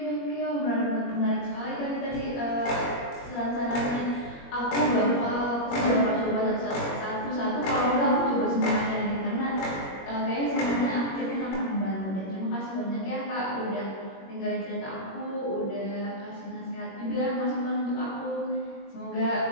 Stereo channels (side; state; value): right; late; 21 ms